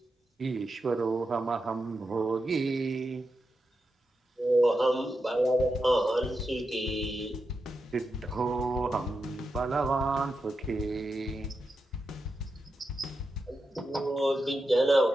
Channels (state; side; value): normal; both; correlation 0.88